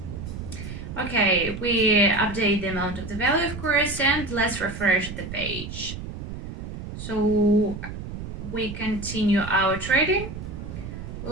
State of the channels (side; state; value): right; noise; rumble, 9 dB below the sound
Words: Okay, we update the amount of the value, of course, and let's refresh the page. So we continue our trading.